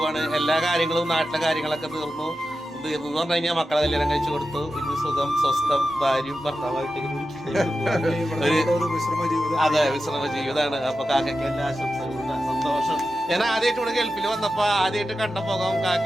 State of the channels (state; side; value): normal; both; correlation 0.92